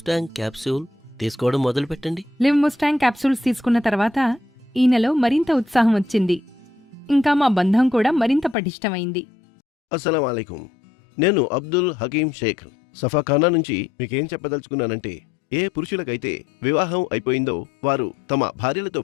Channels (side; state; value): right; drops out; at 8.6 s